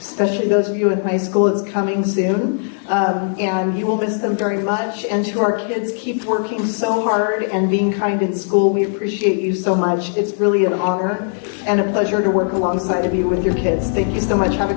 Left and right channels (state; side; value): silent; right; digital silence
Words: those of you in high school. It's coming soon, and you will miss them very much. And to our kids, keep working so hard and being kind in school. We appreciate you so much. It's really an honor and a pleasure to work alongside of you with your kids. Thank you so much. Have a